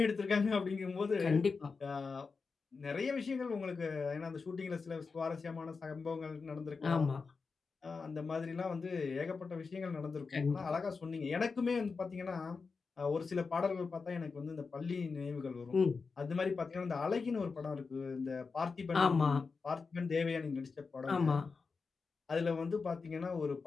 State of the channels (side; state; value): right; quieter; 4.7 dB